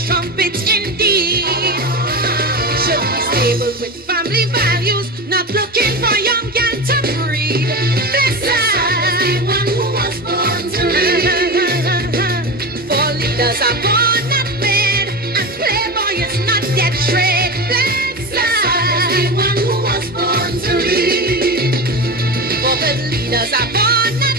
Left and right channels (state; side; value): normal; both; correlation 0.24